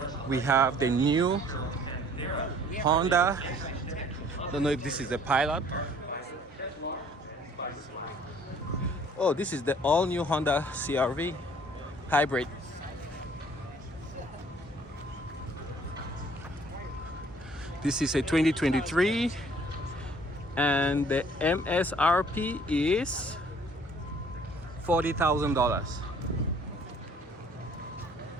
we have the new Honda. Don't know if this is the Pilot. Oh, this is the all-new Honda CR-V hybrid. This is a 2023 and the MSRP is $40,000.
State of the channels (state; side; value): normal; both; correlation 0.57